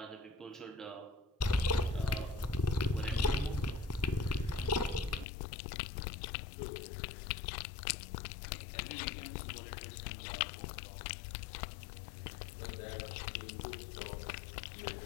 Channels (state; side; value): drops out; right; at 5.2 s